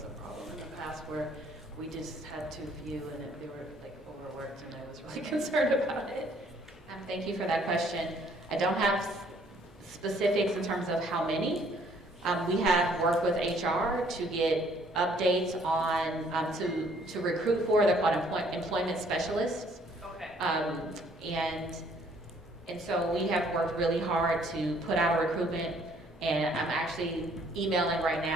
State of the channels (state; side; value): normal; both; correlation 0.62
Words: a problem in the past where we just had too few and they were like overworked and I was really concerned about it. Thank you for that question. I don't have specifics in terms of how many. We have worked with HR to get updates on, to recruit for, they're called employment specialists. Okay. And so we have worked really hard to put out a recruitment, and I'm actually emailing right